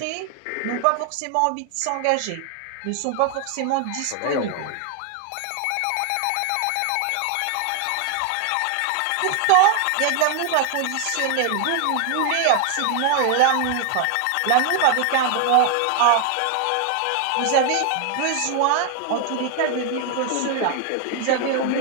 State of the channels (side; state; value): both; different; correlation 0.00